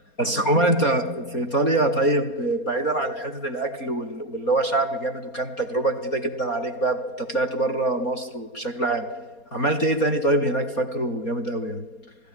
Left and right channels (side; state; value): right; late; 4.3 ms